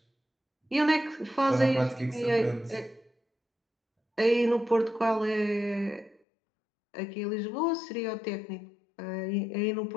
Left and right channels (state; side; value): drops out; right; at 6.2 s